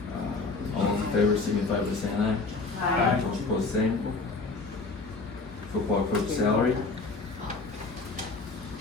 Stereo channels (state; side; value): quieter; right; 3.9 dB